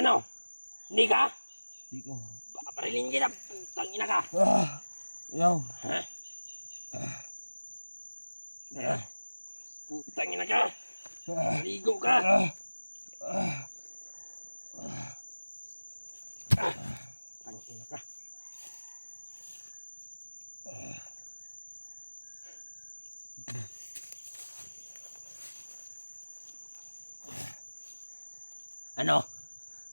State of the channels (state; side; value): inverted; both; correlation -1.00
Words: Hindi ka? Di ko. Babarilin kita! Tangina ka! Yaw. Ha? Putangina ka! Ligo ka! Tangina ka! Ano?